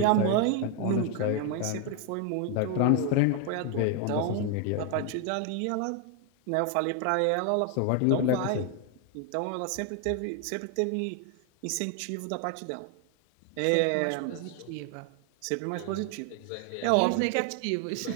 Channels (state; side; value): different; both; correlation 0.01